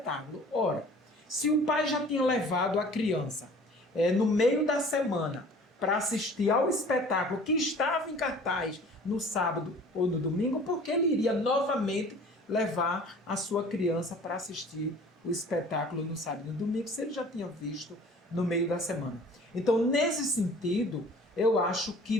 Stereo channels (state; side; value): normal; both; correlation 0.48